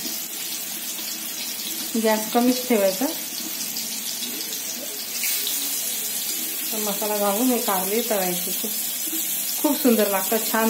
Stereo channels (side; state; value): both; identical; correlation 1.00